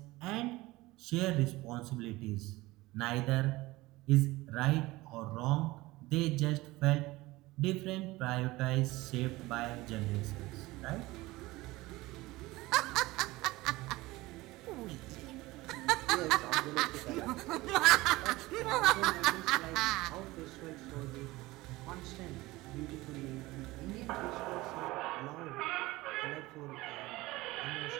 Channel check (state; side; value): quieter; left; 19.8 dB